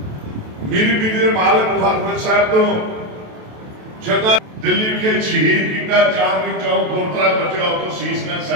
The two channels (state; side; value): late; left; 28 ms